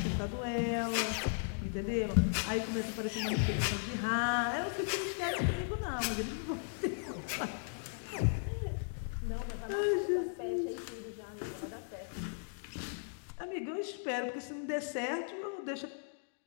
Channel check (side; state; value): right; silent; digital silence